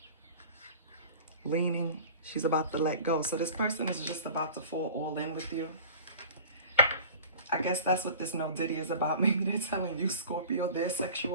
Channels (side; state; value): both; inverted; correlation -0.42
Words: Leaning. She's about to let go. So this person is just about to fall all in with you. I guess that's what this no diddy is about. Maybe they're telling you, Scorpio, their